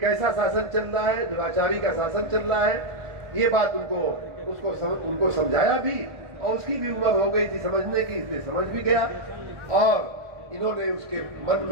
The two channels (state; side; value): late; left; 1.5 ms